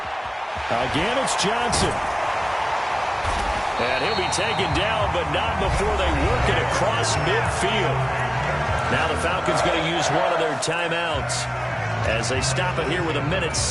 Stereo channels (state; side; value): identical; both; correlation 1.00